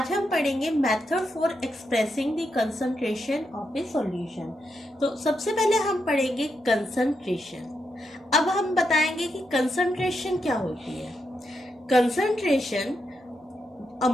हम पढ़ेंगे method for expressing the concentration of a solution. तो सबसे पहले हम पढ़ेंगे concentration. अब हम बताएंगे कि concentration क्या होती है. Concentration,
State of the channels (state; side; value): normal; both; correlation 0.83